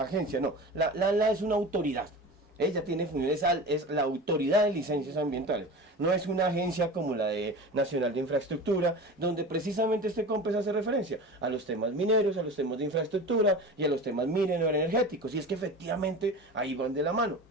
agencia, no, la ANLA es una autoridad, ella tiene funciones, es la autoridad de licencias ambientales, no es una agencia como la de Nacional de Infraestructura, donde precisamente este COMPES hace referencia a los temas mineros, a los temas de infraestructura y a los temas minero-energéticos, y es que efectivamente ahí van de la mano.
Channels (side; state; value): both; normal; correlation 0.33